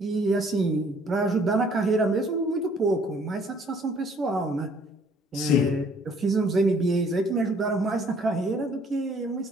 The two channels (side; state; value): both; normal; correlation 0.60